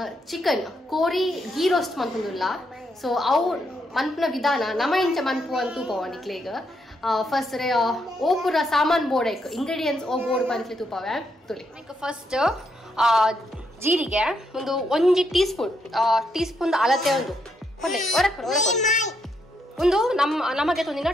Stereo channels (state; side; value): normal; both; correlation 0.78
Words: chicken kori ghee roast mantulla. So avu mantna vidana nama incha mantu antu povani klega. First opura saman board ingredients o board pantli tupave tuli. First ಜೀರಿಗೆ ಒಂದು 1 teaspoon ಅಳತೆ ಒಂದು ನಮಗೆ ತೊಂದಿನ